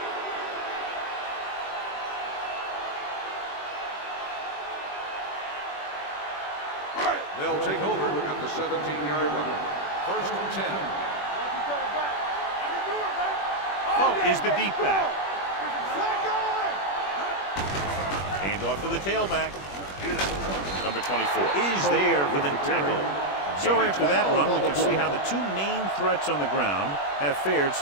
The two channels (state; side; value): late; right; 21 ms